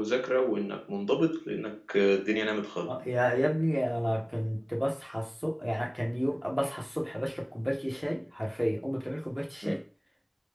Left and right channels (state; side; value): identical; both; correlation 1.00